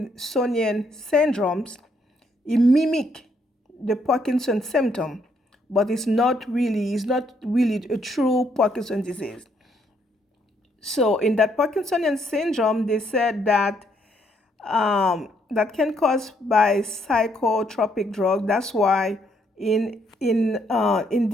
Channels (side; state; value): both; normal; correlation 0.71